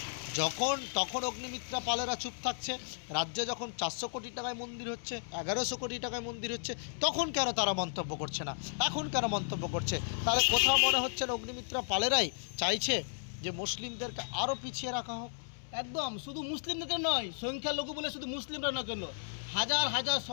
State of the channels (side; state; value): right; silent; 55 dB below the other